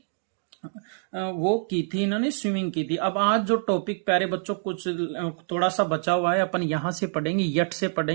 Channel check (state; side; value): silent; left; digital silence